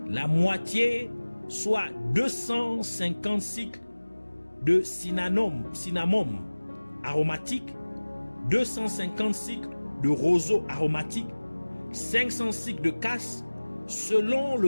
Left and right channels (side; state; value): both; inverted; correlation -1.00